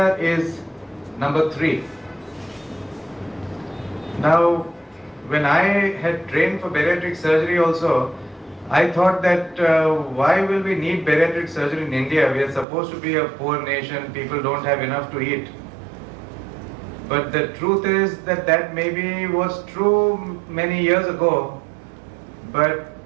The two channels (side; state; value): left; drops out; at 12.7 s